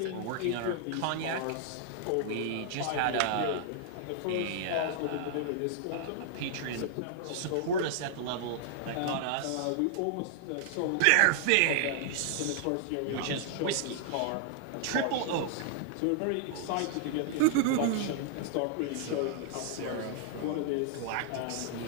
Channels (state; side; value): different; both; correlation -0.01